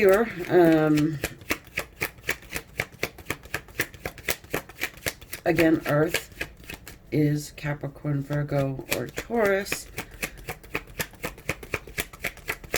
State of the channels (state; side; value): identical; both; correlation 1.00